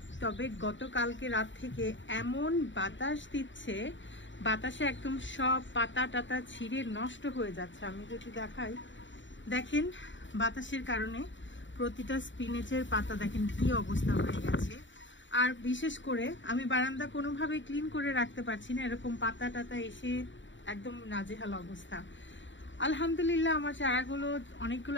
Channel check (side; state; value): right; late; 0.54 ms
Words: তবে গতকালকে রাত থেকে এমন বাতাস দিচ্ছে, বাতাসে একদম সব পাতা টাতা ছিঁড়ে নষ্ট হয়ে যাচ্ছে। আমি যদি দেখাই, দেখেন বাতাসের কারণে প্রতিটা স্পিনেচের পাতা দেখেন কি অবস্থা হয়ে গেছে। আর বিশেষ করে আমি বারান্দা কোনোভাবে ক্লিন করে রাখতে পারছি না, এরকম পাতা টাতা এসে একদম নাজেহাল অবস্থা। আলহামদুলিল্লাহ, আমার চারাগুলো